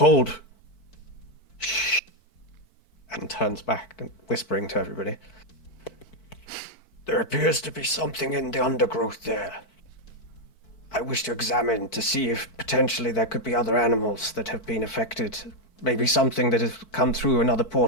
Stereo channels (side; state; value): right; late; 4.5 ms